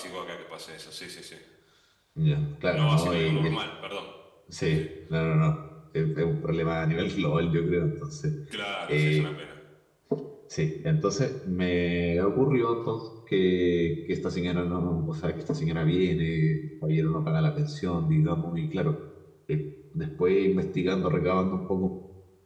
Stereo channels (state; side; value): identical; both; correlation 1.00